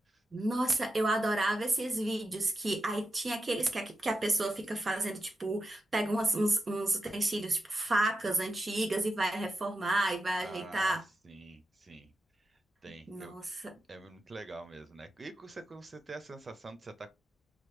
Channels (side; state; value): both; normal; correlation 0.89